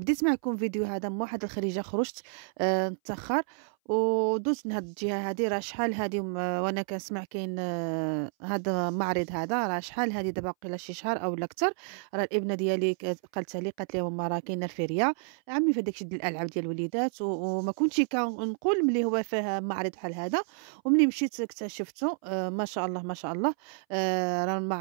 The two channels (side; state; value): left; silent; 58 dB below the other